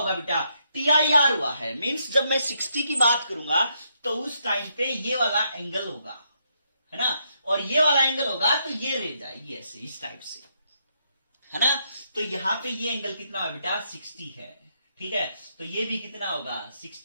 बेटा TIR हुआ है, मींस जब मैं 60 की बात करूंगा तो उस टाइम पे ये वाला एंगल होगा, है ना, और ये वाला एंगल होगा तो ये रह जाएगी ऐसे इस टाइप से, है ना। तो यहां पे ये एंगल कितना होगा बेटा 60 है, ठीक है। तो ये भी कितना होगा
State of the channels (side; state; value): both; inverted; correlation -0.77